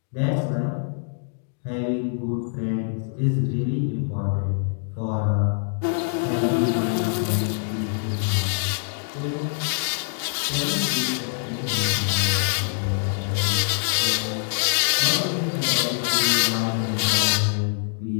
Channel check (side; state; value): right; silent; digital silence